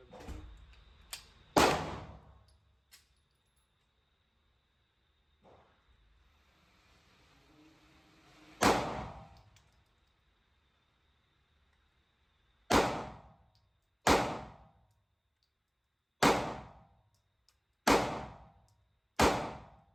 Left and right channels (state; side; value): identical; both; correlation 1.00